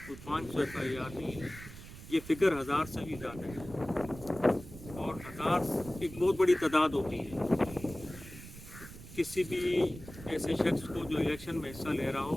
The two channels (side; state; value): right; noise; rumble, 14 dB below the sound